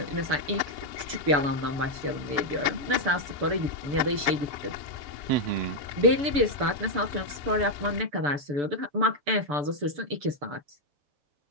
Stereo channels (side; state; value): left; late; 6.9 ms